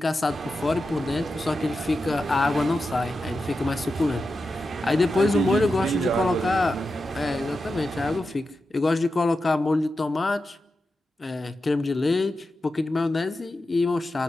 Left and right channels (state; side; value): normal; both; correlation 0.90